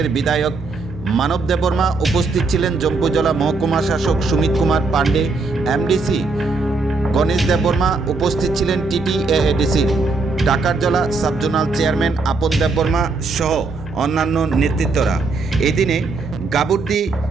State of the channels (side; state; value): left; quieter; 3.8 dB